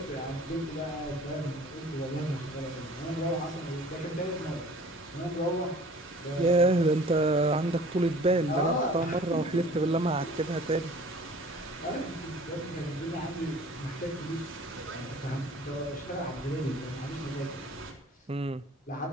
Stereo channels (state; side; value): normal; both; correlation 0.48